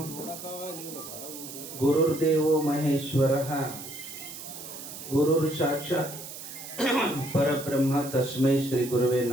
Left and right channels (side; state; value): right; noise; hiss, 11 dB below the sound